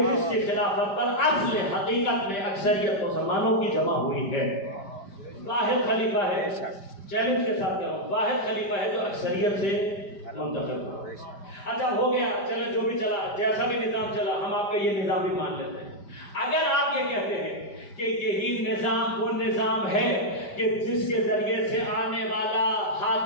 جس کی خلافت پر اصل حقیقت میں اکثریت مسلمانوں کی جمع ہوئی ہے۔ واحد خلیفہ ہے، چیلنج کے ساتھ کہہ رہا ہوں، واحد خلیفہ ہے جو اکثریت سے منتخب ہوا۔ اچھا ہو گیا، چلے جو بھی چلا، جیسا بھی نظام چلا، ہم آپ کا یہ نظام بھی مان لیتے ہیں۔ اگر آپ یہ کہتے ہیں کہ یہی نظام وہ نظام ہے کہ جس کے ذریعے سے آنے والا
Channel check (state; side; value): late; right; 5.1 ms